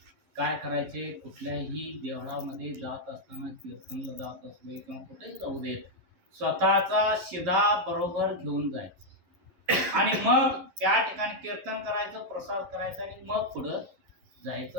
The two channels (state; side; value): late; left; 11 ms